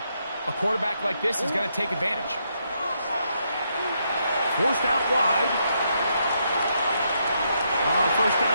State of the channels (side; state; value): both; inverted; correlation -0.78